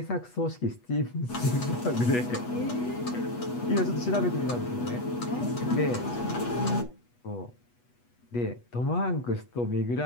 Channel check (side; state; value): right; late; 8.2 ms